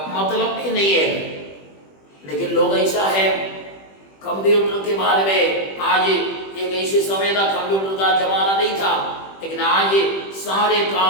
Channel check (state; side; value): late; right; 21 ms